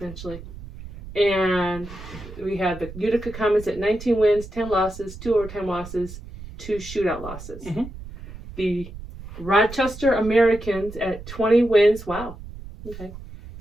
And we have the Utica Comets at 19 wins, 10 losses, 2 overtime losses, 2 shootout losses. Mhm. The Rochester Americans at 20 wins. Wow. Okay.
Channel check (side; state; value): right; noise; rumble, 14 dB below the sound